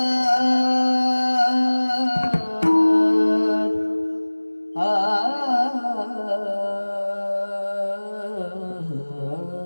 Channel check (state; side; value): inverted; both; correlation -1.00